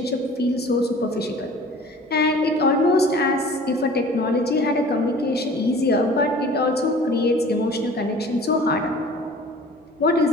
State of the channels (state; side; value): normal; both; correlation 0.46